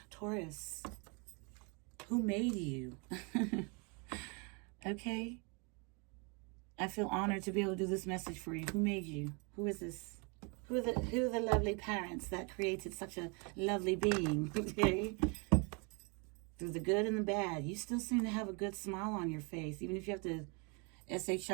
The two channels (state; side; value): quieter; left; 32.7 dB